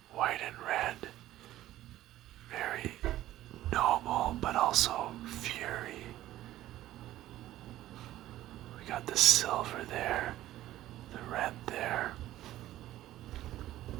White and red. Very noble, but also fury. We got the silver there, the red there.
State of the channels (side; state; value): left; quieter; 14.3 dB